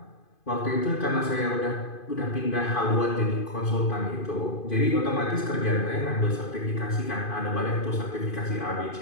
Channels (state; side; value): late; right; 2.5 ms